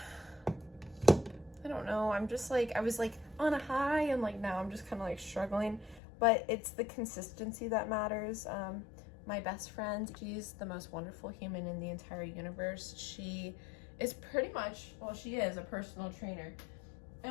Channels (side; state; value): right; drops out; at 6.0 s